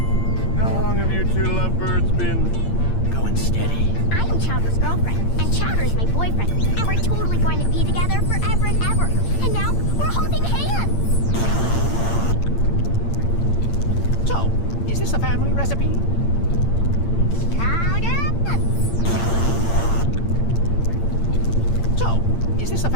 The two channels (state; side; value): late; right; 8.7 ms